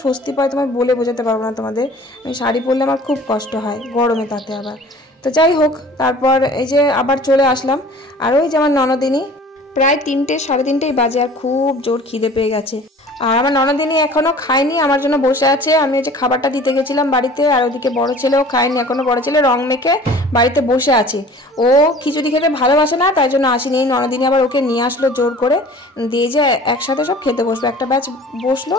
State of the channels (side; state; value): both; normal; correlation 0.46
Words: স্বস্তি পাই তোমায় বলে বোঝাতে পারবো না তোমাদের। আমি শাড়ি পরলে আমার খুব কষ্ট হয় গরমে, তাতে আবার। তো যাই হোক, তারপর এই যে আবার চলে আসলাম। আর ওই যে আমার ননদিনী, প্রায় 3টে 3:30 বাজে, আর খুব জোর খিদে পেয়ে গেছে। আর আমার ননদিনী এখনো খায়নি, আমার জন্য বসে আছে। আমি ওই যে খাবারটা দিতে গেছিলাম বাড়িতে, আর ওদিকে বড় ছেলেও খায়নি এখনো। বড় ছেলে রং মেখে বাড়িতে বসে আছে, ও খিচুড়ি খেতে ভালোবাসে না, তাই জন্য আসেনি। ননদিনী আবার ওকে নিয়ে আসলো জোর করে, দিয়ে যে একসাথে সব খেতে বসবে। একটা ব্যাচ বসলো,